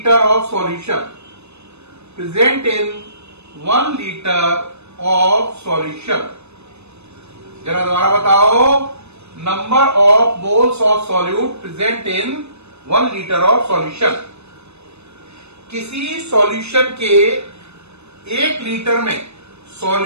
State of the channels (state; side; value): late; left; 0.81 ms